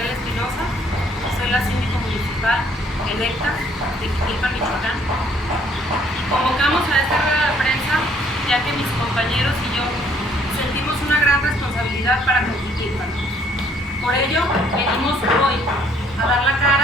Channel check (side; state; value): both; normal; correlation 0.63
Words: Espinosa, soy la síndico municipal electa de Jiquilpan, Michoacán. Convocamos a esta rueda de prensa ya que mis compañeros y yo sentimos una gran responsabilidad para con Jiquilpan. Por ello, venimos hoy a dar la